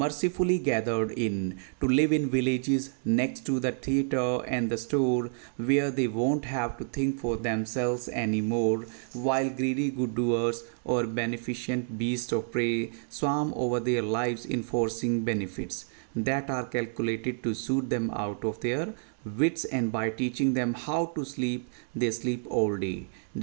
gathered in, to live in villages next to the theatre and the store, where they won't have to think for themselves any more, while greedy good doers or beneficent beasts of prey swarm over their lives, enforcing benefits that are calculated to suit them out of their wits, and by teaching them how to sleep, they sleep all day,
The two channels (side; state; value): left; silent; digital silence